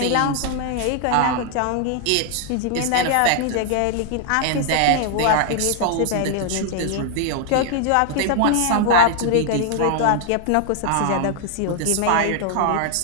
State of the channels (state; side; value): different; both; correlation 0.00